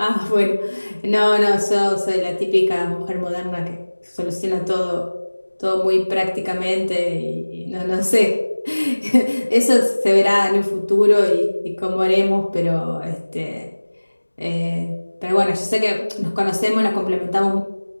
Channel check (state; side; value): inverted; both; correlation -1.00